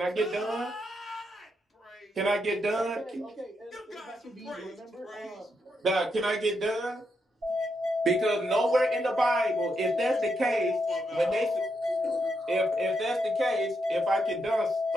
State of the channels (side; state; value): both; normal; correlation 0.82